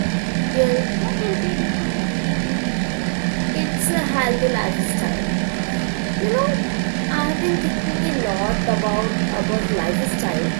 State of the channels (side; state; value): left; silent; digital silence